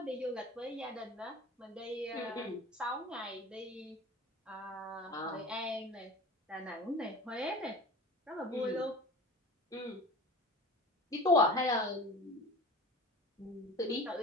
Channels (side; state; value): both; normal; correlation 0.38